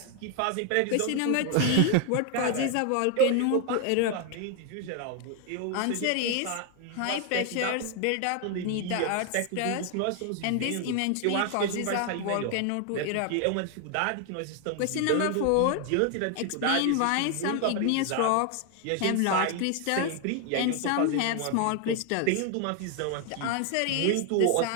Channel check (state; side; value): different; both; correlation 0.01